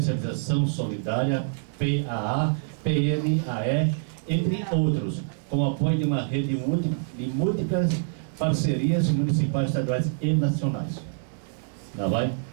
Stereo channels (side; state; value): left; silent; digital silence